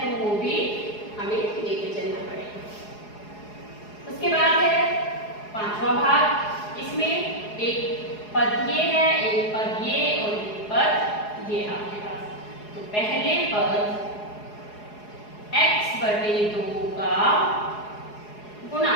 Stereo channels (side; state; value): right; late; 4.8 ms